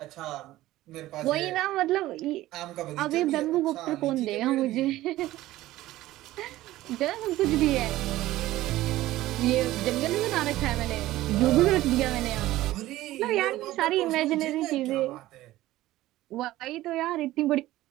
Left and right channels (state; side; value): quieter; left; 16.0 dB